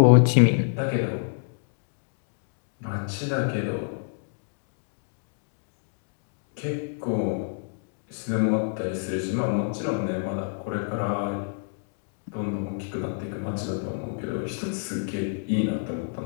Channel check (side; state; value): right; silent; digital silence